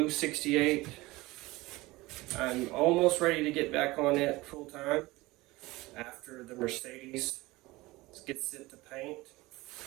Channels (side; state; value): left; quieter; 20.6 dB